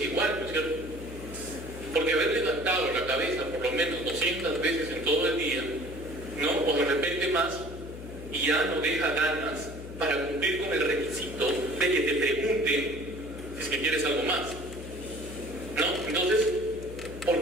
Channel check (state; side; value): noise; left; hum, 12 dB below the sound